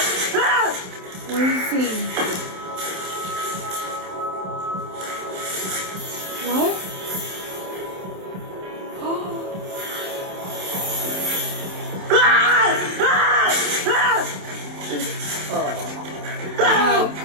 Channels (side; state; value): left; late; 27 ms